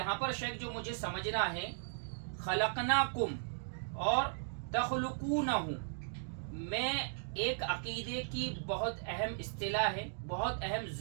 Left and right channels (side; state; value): left; silent; digital silence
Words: پر شیخ جو مجھے سمجھنا ہے، خلقناکم اور تخلقونہ میں ایک عقیدے کی بہت اہم اصطلاح ہے، بہت اہم